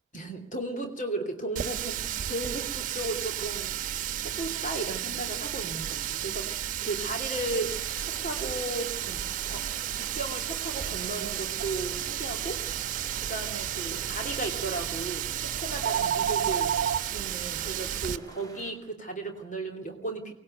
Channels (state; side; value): quieter; left; 6.4 dB